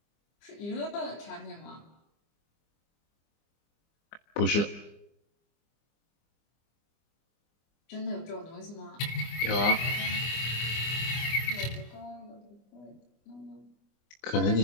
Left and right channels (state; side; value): late; right; 25 ms